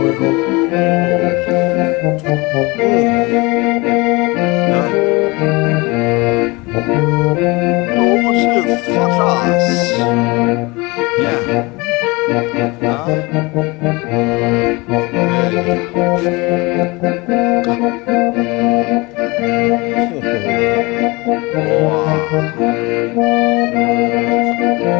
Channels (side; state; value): right; quieter; 24.9 dB